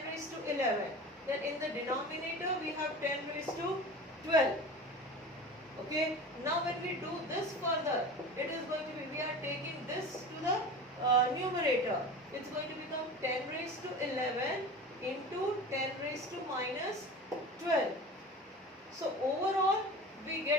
raised to 11. Then in the denominator we have 10 raised to 12. Okay, now when we do this further, it is going to be, we are taking this to the numerator. It's going to become 10 raised to 11 into 10 raised to minus 12. So overall we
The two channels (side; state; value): both; normal; correlation 0.34